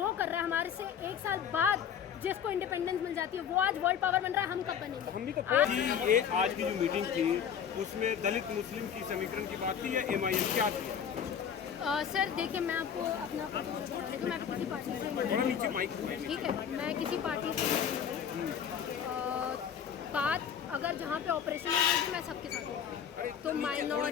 कर रहा है, हमारे से 1 साल बाद जिसको इंडिपेंडेंस मिल जाती है, वो आज वर्ल्ड पावर बन रहा है। हम कब बनेंगे? हम भी तो ये आज की जो मीटिंग थी उसमें दलित मुस्लिम की समीकरण की बात थी या MIM क्या थी? सर देखिए, मैं आपको अपना मैं किसी पार्टी से नीचे माइक, ठीक है, मैं किसी पार्टी से बात, अगर जहाँ पे ऑपरेशन है मैं सबके साथ हूँ। तो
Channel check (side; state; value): right; quieter; 8.1 dB